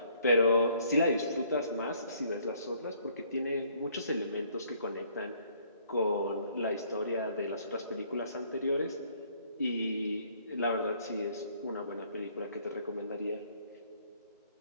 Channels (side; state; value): both; inverted; correlation -0.63